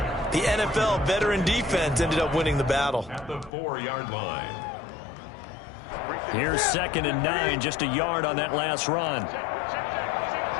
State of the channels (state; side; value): drops out; right; at 3.5 s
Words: the NFL veteran defense ended up winning the battle. At the 4-yard line. Here's 2nd and 9, just a yard on that last run.